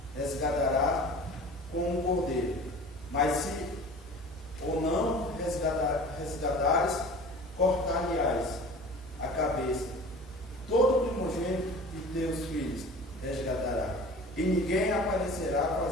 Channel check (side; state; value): right; noise; hum, 21 dB below the sound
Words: resgatará como um cordeiro. Mas se ou não resgatares, cortar-lhe-ás a cabeça. Todo primogênito de teus filhos resgatará, e ninguém aparecerá